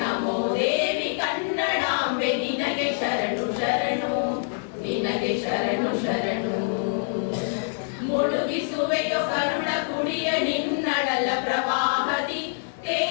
ದೇವಿ ಕನ್ನಡಾಂಬೆ ನಿನಗೆ ಶರಣು ಶರಣು, ನಿನಗೆ ಶರಣು ಶರಣು. ಮುಳುಗಿಸುವೆಯೋ ಕರುಣ ಕುಡಿಯ ನಿನ್ನಳಲ ಪ್ರವಾಹದಿ,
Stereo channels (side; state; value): right; silent; digital silence